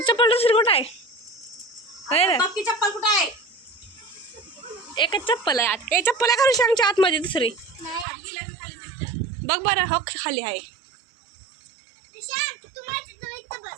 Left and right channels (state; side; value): drops out; left; at 8.1 s